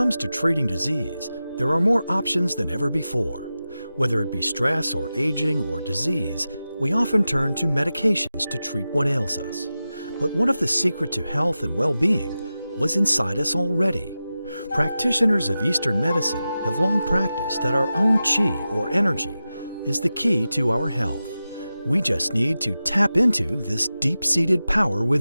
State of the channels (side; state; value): both; inverted; correlation -0.93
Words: to treating disease, there are more options than ever before. Whether it be stress or aging or disease, we often turn to medications to treat what ails us. But what if the secret to health and well-being was inside us already? Practitioners of Eastern medicine have long practiced that our own qi or energy is the key to our health. We just need to tap into this deep-seated power